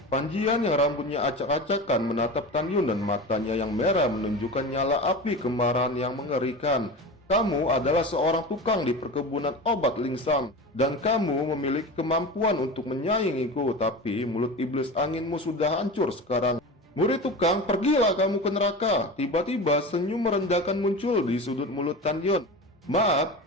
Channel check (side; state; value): both; normal; correlation 0.29